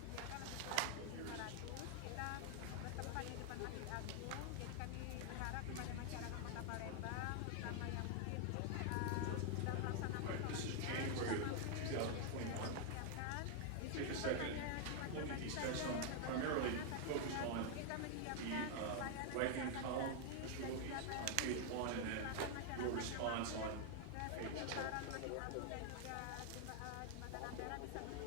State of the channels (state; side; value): different; both; correlation 0.00